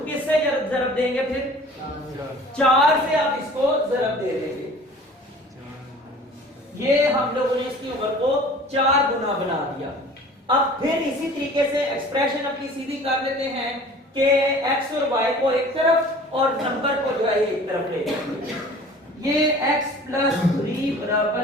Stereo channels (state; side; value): normal; both; correlation 0.46